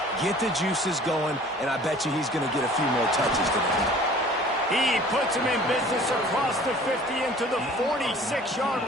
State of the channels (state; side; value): normal; both; correlation 0.49